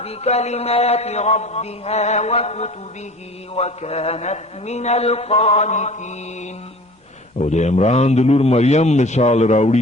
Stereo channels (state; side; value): normal; both; correlation 0.43